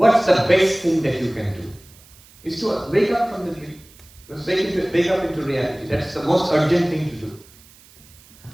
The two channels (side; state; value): right; noise; hiss, 25 dB below the sound